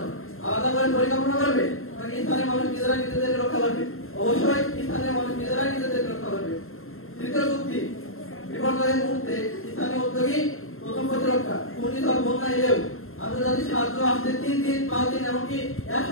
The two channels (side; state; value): right; late; 0.61 ms